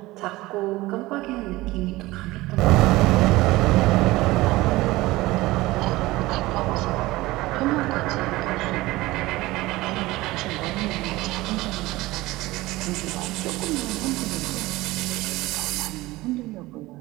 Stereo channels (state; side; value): quieter; left; 19.1 dB